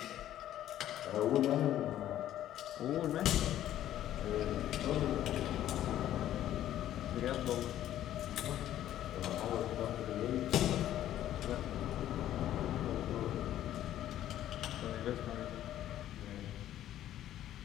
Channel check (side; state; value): right; quieter; 12.3 dB